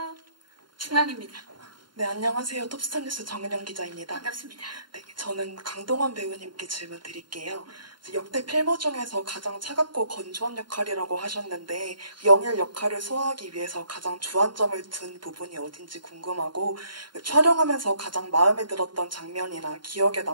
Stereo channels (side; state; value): left; late; 0.72 ms